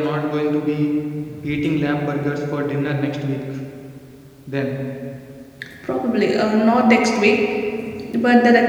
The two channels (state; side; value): identical; both; correlation 1.00